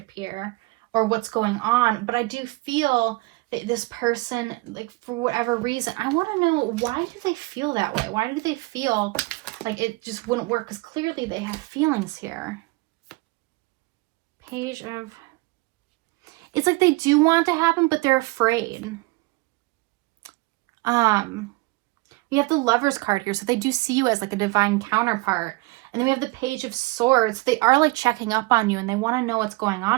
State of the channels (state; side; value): quieter; left; 23.5 dB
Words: here or what's going on, but I do feel that this person, like, for whatever reason, I want to know, why do they feel that way? Why do they feel like it just wouldn't work? Because clearly they have feelings here. Page of... It's like they do want it to happen, but they're afraid. We have the Lover's card here, so they do see you as like a divine counterpart. And then we have the Page of Swords. They are like checking up on you, and they want to know what's going